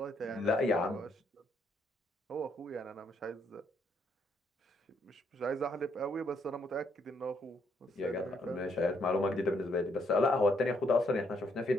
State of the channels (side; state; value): both; normal; correlation 0.72